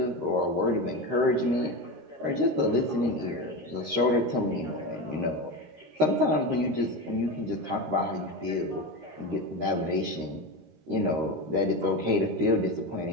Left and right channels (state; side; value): late; left; 13 ms